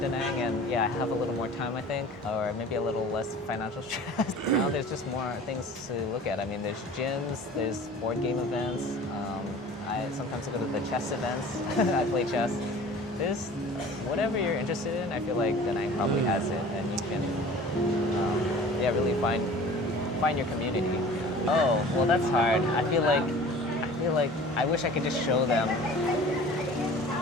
Nang and I have a little more time, I think, or maybe a little less financial stress. Now there's just more things to look at. I mean, there's gyms, there's board game events. I sometimes go to the chess events. I play chess. There's whatever you're interested in. I feel like Da Nang probably has it, and you can really find your community. Oh, well, that's hard. I feel like I wish I could just show them.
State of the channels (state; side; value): normal; both; correlation 0.44